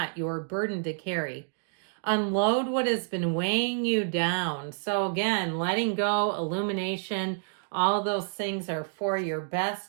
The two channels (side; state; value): left; silent; digital silence